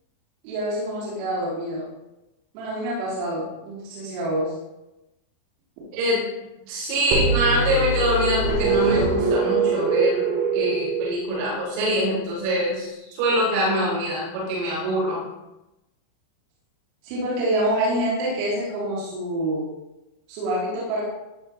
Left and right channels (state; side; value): late; left; 37 ms